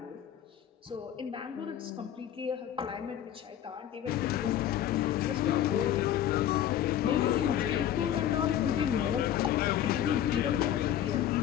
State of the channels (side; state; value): right; quieter; 11.0 dB